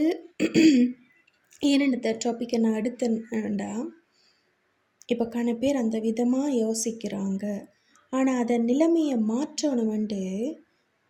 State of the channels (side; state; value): both; identical; correlation 1.00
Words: ஏன்னு டாப்பிக்கை நான் எடுத்தேன்டா, இப்போ பேர் அந்த விதமாக யோசிக்கிறாங்க. ஆனால் அதை நிலைமையை மாற்றணுமெண்டு